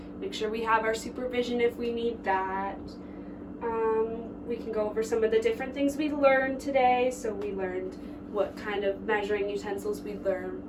Make sure we have our supervision if we need that. We can go over some of the different things we learned today. So we learned what kind of measuring utensils we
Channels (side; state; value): both; identical; correlation 1.00